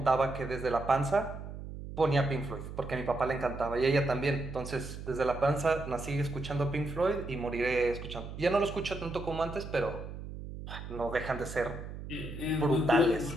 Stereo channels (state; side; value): noise; right; hum, 10 dB below the sound